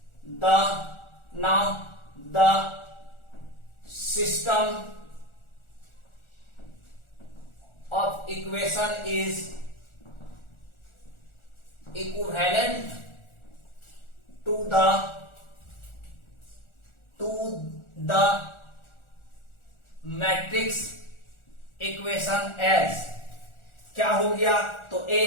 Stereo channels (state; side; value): late; right; 1.4 ms